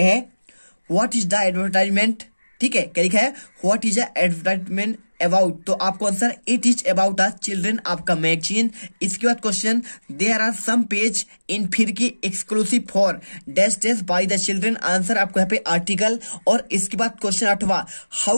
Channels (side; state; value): both; inverted; correlation -1.00